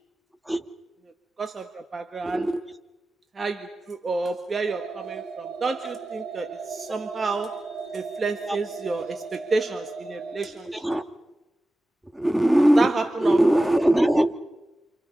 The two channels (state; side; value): normal; both; correlation 0.95